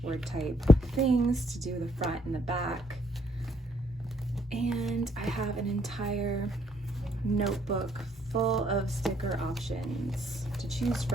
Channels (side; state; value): both; normal; correlation 0.69